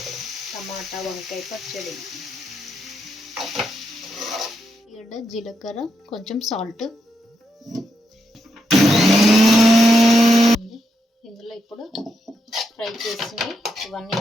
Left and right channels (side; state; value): both; normal; correlation 0.82